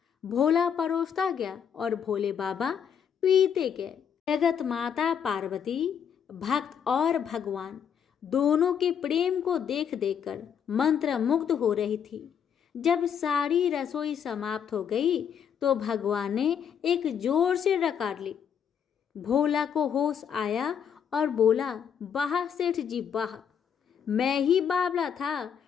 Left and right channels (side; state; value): right; quieter; 7.9 dB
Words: भोला परोसता गया और भोले बाबा पीते गए। जगत माता पार्वती, भक्त और भगवान दोनों के प्रेम को देख देखकर मंत्रमुग्ध हो रही थी। जब सारी रसोई समाप्त हो गई तो भगवान ने एक जोर से डकार ली। भोला को होश आया और बोला, वाह सेठ जी वाह, मैं ही बावला था